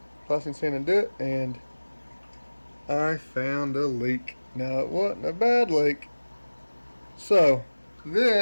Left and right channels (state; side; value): inverted; both; correlation -1.00